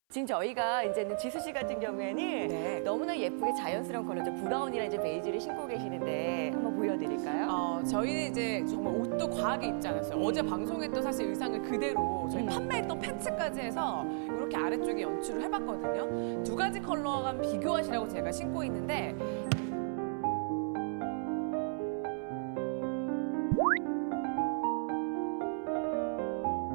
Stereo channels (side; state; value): left; silent; 55 dB below the other